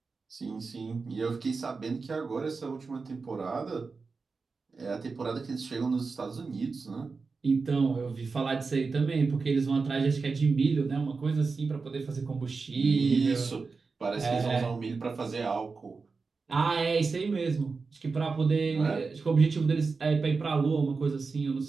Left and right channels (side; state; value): left; quieter; 4.5 dB